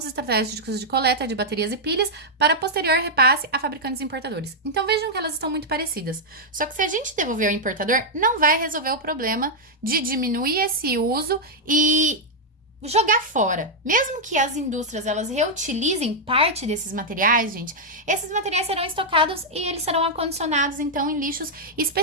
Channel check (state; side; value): normal; both; correlation -0.04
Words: estratégicos de coleta de baterias e pilhas para posterior repasse a fabricantes e importadores. Então vejam que elas estão muito parecidas. Só que se a gente devolver ao importador, não vai resolver o problema de diminuir esse uso e jogar fora. Mesmo que as indústrias elas reutilizem parte desses materiais, gente, esses materiais serão estocados e eles serão acondicionados então em lixos